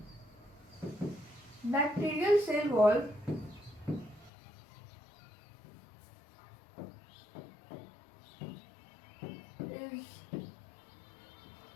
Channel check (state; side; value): drops out; right; at 4.3 s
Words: बैक्टीरियल सेल वॉल